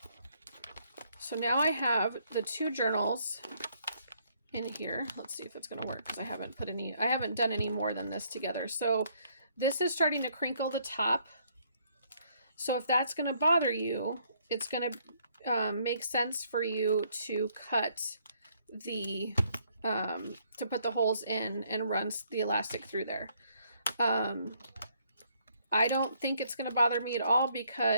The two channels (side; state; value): both; inverted; correlation -0.69